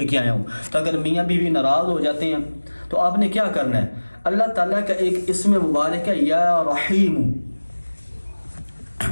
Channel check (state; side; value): inverted; both; correlation -1.00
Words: کے آیا ہوں۔ تو اگر میاں بیوی ناراض ہو جاتے ہیں تو آپ نے کیا کرنا ہے؟ اللہ تعالیٰ کا ایک اسم مبارک ہے یا رحیم،